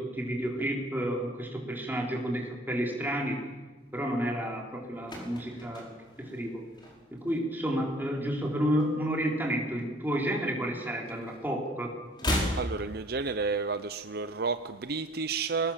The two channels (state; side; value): normal; both; correlation 0.55